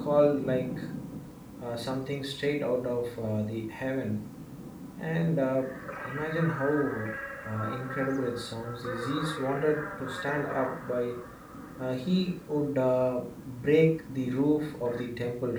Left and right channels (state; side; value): identical; both; correlation 1.00